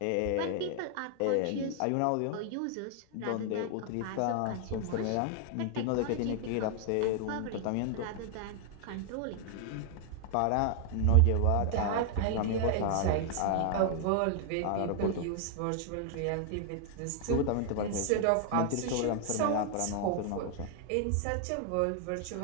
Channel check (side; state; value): both; different; correlation 0.00